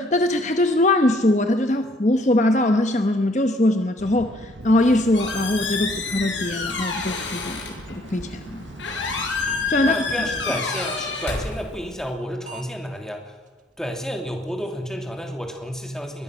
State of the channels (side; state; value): both; normal; correlation 0.63